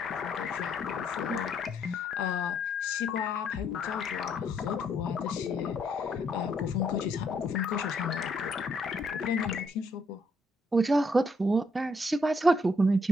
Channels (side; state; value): both; normal; correlation 0.72